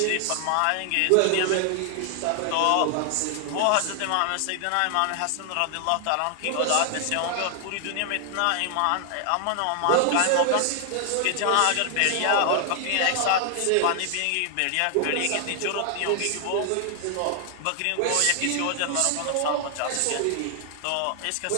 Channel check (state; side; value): different; both; correlation 0.00